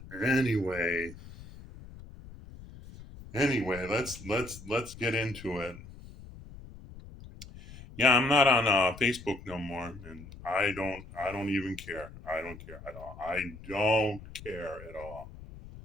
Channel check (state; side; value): noise; left; rumble, 16 dB below the sound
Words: Anyway, let's get into it. Yeah, I'm not on Facebook no more, and I don't even care. I don't care at all. I don't care at all